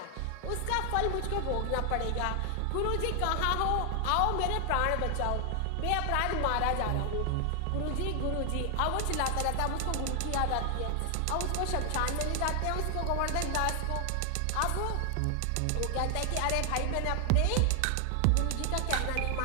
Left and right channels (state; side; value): different; both; correlation 0.00